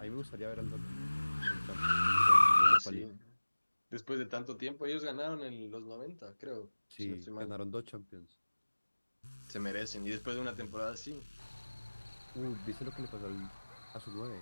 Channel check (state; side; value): inverted; both; correlation -1.00